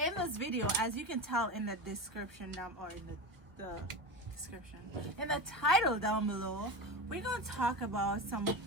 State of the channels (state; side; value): late; left; 1.1 ms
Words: this video, as you can tell in the description down, or in the description, in the title down below, we're going to talk about some